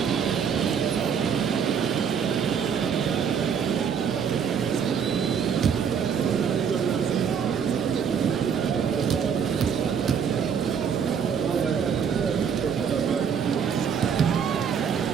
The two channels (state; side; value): quieter; left; 7.2 dB